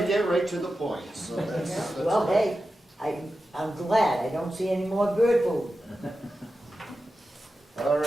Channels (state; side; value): normal; both; correlation 0.92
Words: get right to the point, so that's Well, good. hey, I'm glad I don't see any more bird food. All